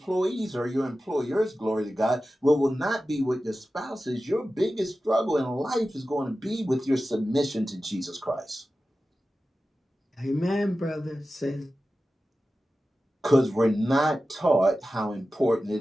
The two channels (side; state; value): both; normal; correlation 0.94